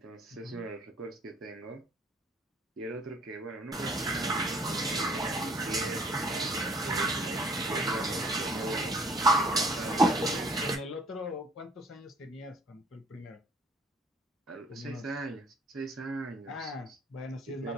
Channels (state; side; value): normal; both; correlation 0.57